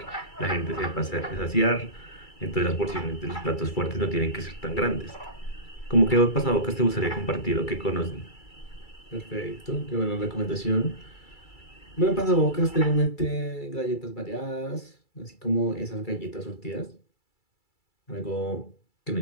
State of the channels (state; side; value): late; right; 2.3 ms